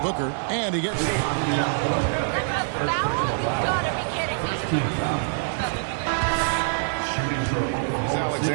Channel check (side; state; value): left; silent; digital silence